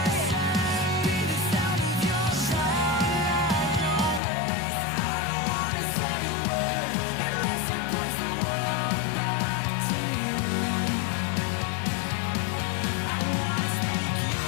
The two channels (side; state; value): right; drops out; at 4.2 s